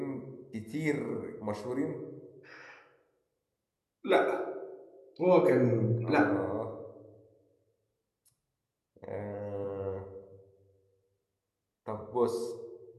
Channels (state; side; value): identical; both; correlation 1.00